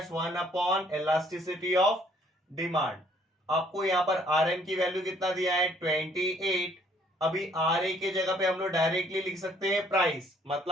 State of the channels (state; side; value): normal; both; correlation 0.62